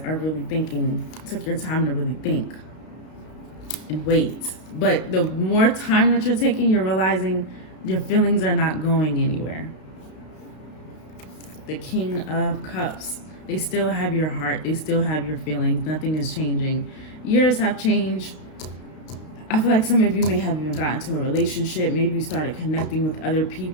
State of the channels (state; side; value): late; right; 32 ms